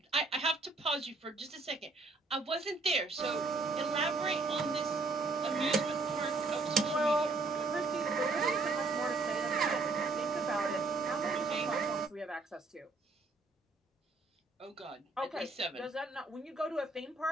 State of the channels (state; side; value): quieter; left; 3.5 dB